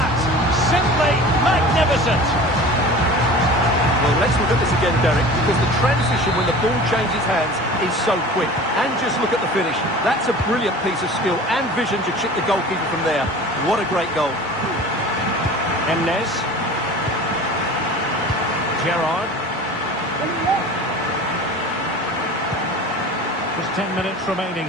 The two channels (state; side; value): normal; both; correlation 0.39